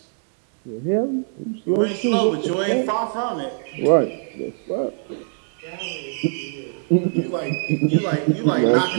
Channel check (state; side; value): silent; left; 64 dB below the other